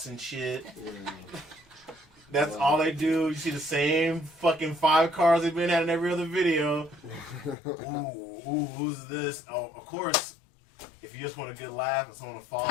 and shit. That's all they do. You see the same fucking 5 cars they've been at in every other video. Ooh, who's this? Oh, of course. If you just want a good laugh and someone to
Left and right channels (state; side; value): drops out; right; at 7.6 s